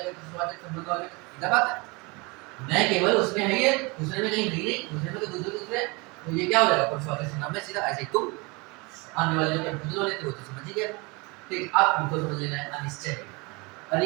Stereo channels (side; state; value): left; quieter; 27.2 dB